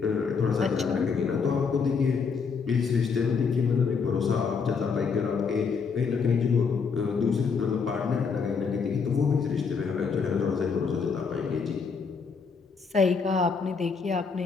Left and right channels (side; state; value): right; quieter; 5.5 dB